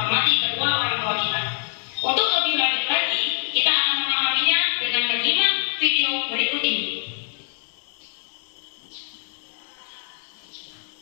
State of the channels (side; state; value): right; silent; digital silence